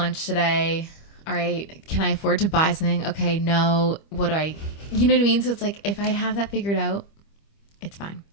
today? All right, can I afford to buy something? Okay, no. You know what I mean? So it's like, if I have that figured out, it's fine.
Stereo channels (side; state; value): right; late; 25 ms